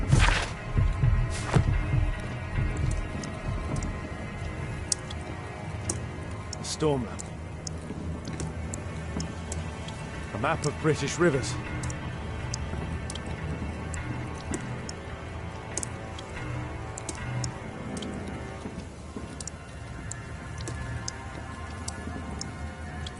A storm map. A map of British rivers.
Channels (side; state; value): both; identical; correlation 1.00